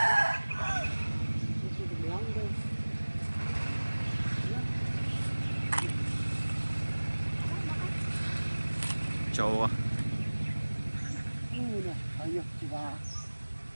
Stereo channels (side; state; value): both; inverted; correlation -1.00